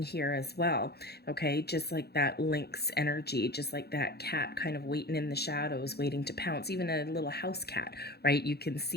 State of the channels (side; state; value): right; late; 0.47 ms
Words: here as well. Okay, just like that lynx energy, just like that cat kind of waiting in the shadows, waiting to pounce. Even a little house cat, right? You can